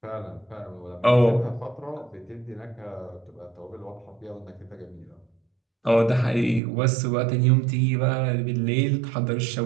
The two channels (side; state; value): left; drops out; at 6.6 s